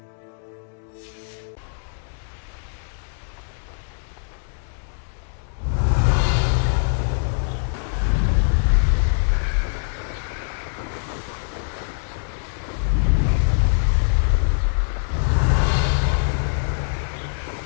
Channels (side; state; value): right; silent; digital silence